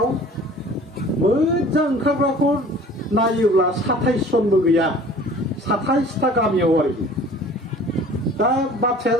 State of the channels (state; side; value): normal; both; correlation 0.47